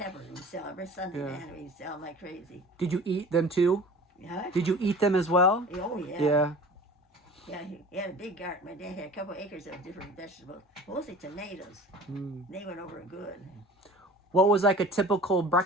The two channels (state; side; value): normal; both; correlation 0.43